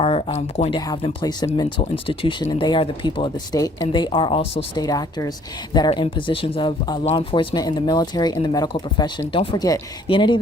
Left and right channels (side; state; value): both; normal; correlation 0.59